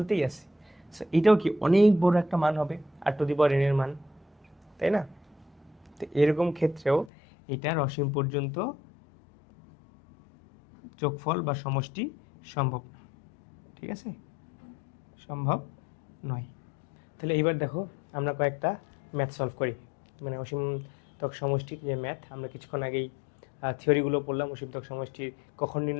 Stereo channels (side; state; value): right; drops out; at 7.1 s